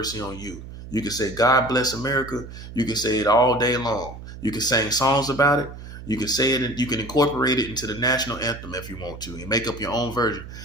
on you. You can say, God bless America. You can say it all day long. You can sing songs about it. You can say it, and you can incorporate it into the national anthem if you want to, and make up your own version.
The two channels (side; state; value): right; noise; hum, 13 dB below the sound